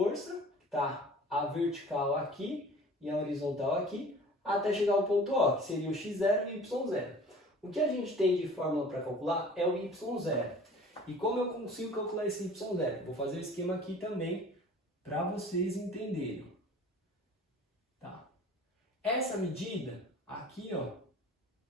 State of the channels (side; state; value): both; normal; correlation 0.46